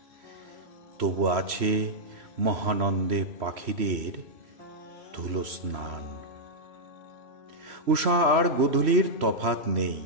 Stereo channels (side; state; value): left; late; 3.1 ms